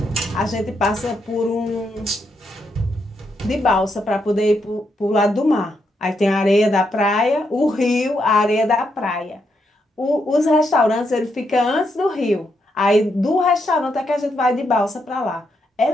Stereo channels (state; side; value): normal; both; correlation 0.80